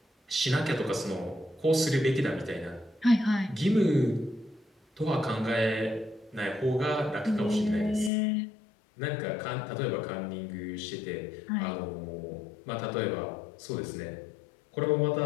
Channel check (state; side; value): drops out; right; at 8.1 s